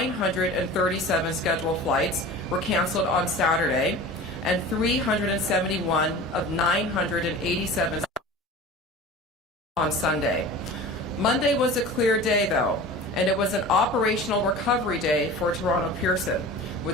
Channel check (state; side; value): normal; both; correlation 0.37